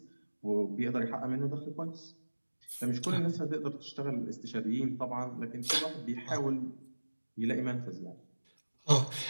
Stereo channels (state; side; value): inverted; both; correlation -1.00